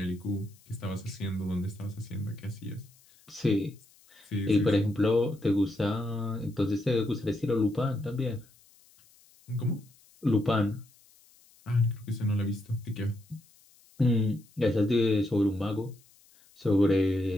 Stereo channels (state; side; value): noise; left; hiss, 29 dB below the sound